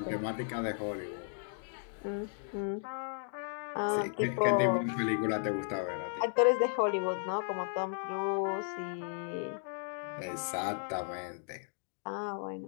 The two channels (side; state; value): right; silent; 55 dB below the other